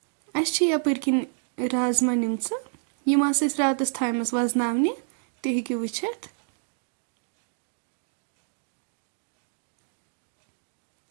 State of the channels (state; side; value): silent; left; digital silence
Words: अस यपर किन राजमा निम रातस थामस वजनावने तुम हेकु वुचित